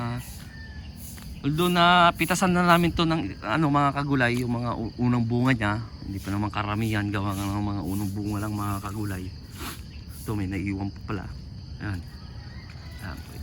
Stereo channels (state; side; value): identical; both; correlation 1.00